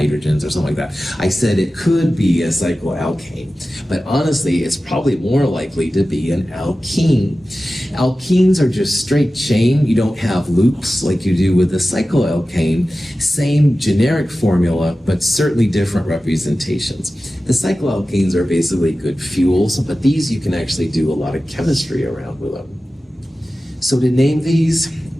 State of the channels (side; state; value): both; normal; correlation 0.95